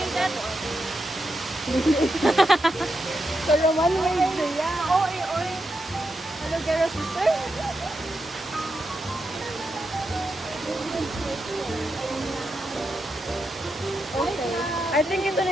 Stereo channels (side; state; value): both; normal; correlation 0.85